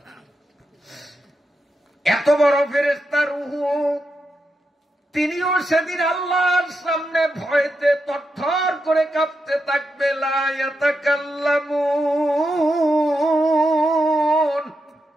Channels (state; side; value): normal; both; correlation 0.86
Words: এত বড় ফেরেশতা রূহ, তিনিও সেদিন আল্লাহর সামনে ভয়তে তরতর করে কাঁপতে থাকবে। লা ইয়াতাকাল্লামুন,